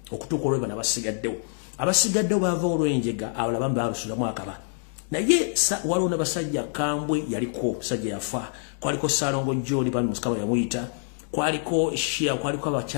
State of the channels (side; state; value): right; silent; 61 dB below the other